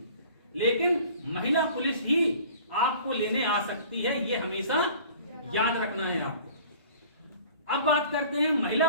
लेकिन महिला पुलिस ही आपको लेने आ सकती है, ये हमेशा याद रखना है आपको। अब बात करते हैं, महिला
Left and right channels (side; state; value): both; inverted; correlation -0.48